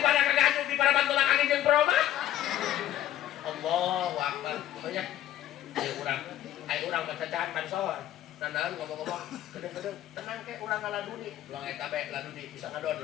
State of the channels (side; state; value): right; quieter; 12.7 dB